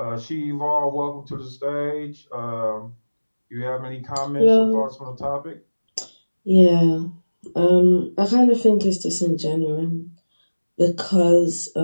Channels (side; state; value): both; inverted; correlation -1.00